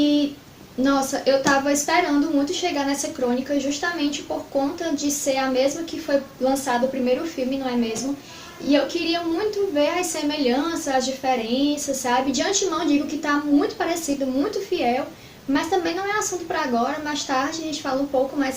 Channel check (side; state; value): both; identical; correlation 1.00